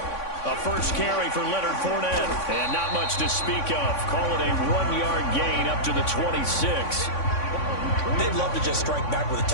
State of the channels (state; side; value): late; right; 3.5 ms